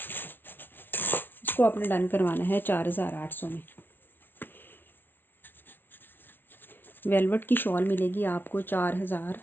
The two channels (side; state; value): right; late; 0.093 ms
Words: इसको आपने डन करवाना है 4800 में। वेलवेट की शॉल मिलेगी आपको